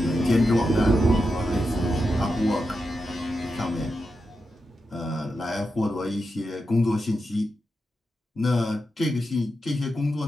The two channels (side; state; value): both; normal; correlation 0.88